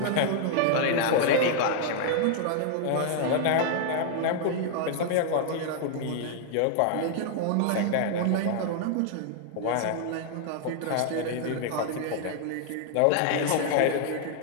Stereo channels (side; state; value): both; different; correlation -0.01